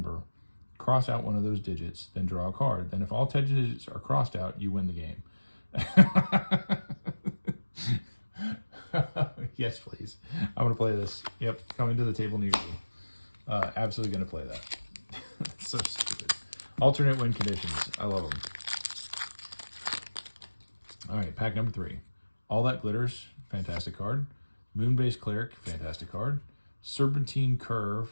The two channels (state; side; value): inverted; both; correlation -1.00